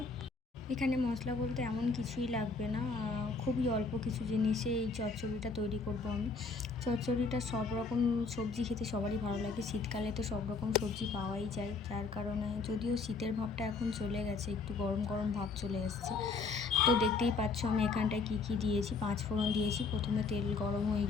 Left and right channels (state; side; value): quieter; right; 4.3 dB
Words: এখানে মশলা বলতে এমন কিছুই লাগবে না, খুবই অল্প কিছু জিনিসে এই চচ্চড়িটা তৈরি করব আমি। চচ্চড়িটা সব রকম সবজি খেতে সবারই ভালো লাগে। শীতকালে তো সব রকম সবজি পাওয়াই যায়, যার কারণে যদিও শীতের ভাবটা এখন চলে গেছে, একটু গরম গরম ভাব চলে আসছে। তো দেখতেই পাচ্ছ আমি এখানটায় কী দিয়েছি। 5 ফোড়ন দিয়েছি প্রথমে, তেল গরম হয়ে